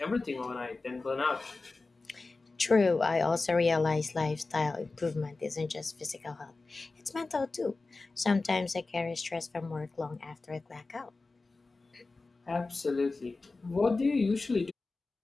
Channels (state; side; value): quieter; right; 3.6 dB